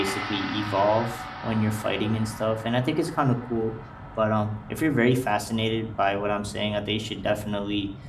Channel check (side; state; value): both; identical; correlation 1.00